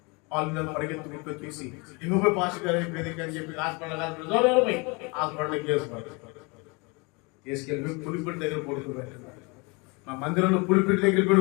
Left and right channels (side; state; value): right; quieter; 29.1 dB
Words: వాళ్ళు పరిగెత్తుకుంటూ వచ్చేసి ఇంకొక పాస్ గారు అని చెప్పి హాస్పిటల్కి తీసుకెళ్ళి పులిపిడి దగ్గర పడుకోబెట్టండి, మా మందిరంలో పులిపిడి దగ్గర